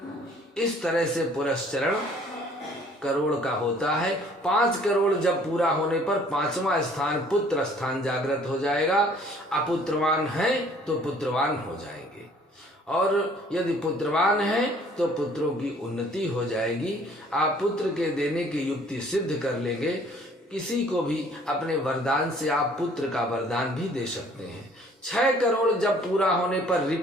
इस तरह से पुरस्चरण करोड़ का होता है। 5 करोड़ जब पूरा होने पर 5वां स्थान पुत्र स्थान जागृत हो जाएगा। अपुत्रवान है तो पुत्रवान हो जाएंगे, और यदि पुत्रवान है तो पुत्रों की उन्नति हो जाएगी। आप पुत्र के देने की युक्ति सिद्ध कर लेंगे। किसी को भी अपने वरदान से आप पुत्र का वरदान भी दे सकते हैं। 6 करोड़ जब पूरा होने पर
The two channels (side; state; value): both; normal; correlation 0.56